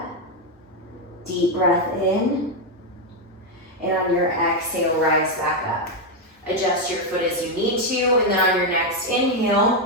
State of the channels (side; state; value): both; normal; correlation 0.04